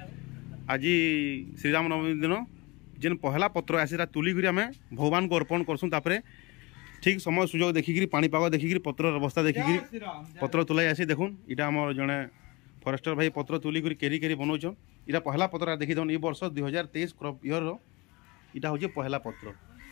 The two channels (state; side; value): quieter; right; 24.9 dB